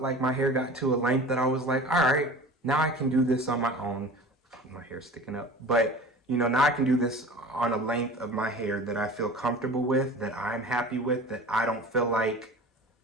like my hair got to a length that I was like, all right, now I can do this on my own. My hair's sticking up. But, you know, now I can do this on a length of my hair that I feel comfortable with, that I'm happy with, that I don't feel like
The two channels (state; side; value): normal; both; correlation 0.39